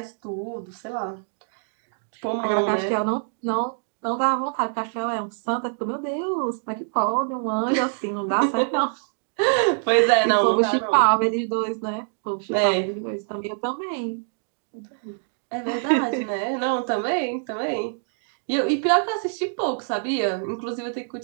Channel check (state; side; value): silent; left; 62 dB below the other